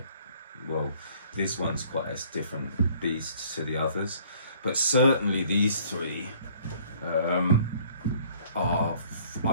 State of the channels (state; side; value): inverted; both; correlation -0.57